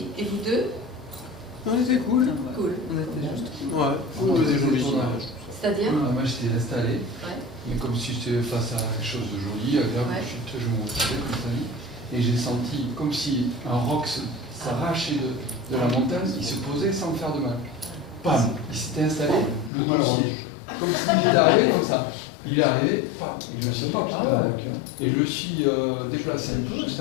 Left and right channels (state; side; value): drops out; right; at 19.7 s